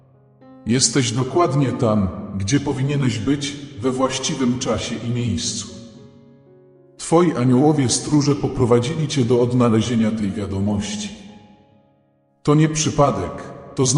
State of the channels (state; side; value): identical; both; correlation 1.00